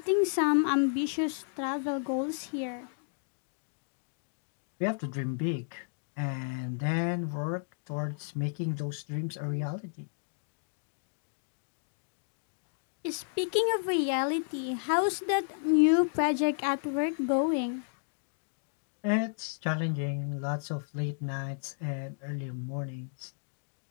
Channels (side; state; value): right; silent; digital silence